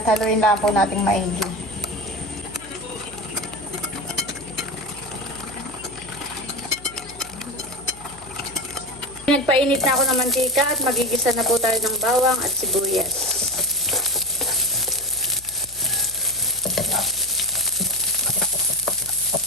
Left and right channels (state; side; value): noise; left; hum, 21 dB below the sound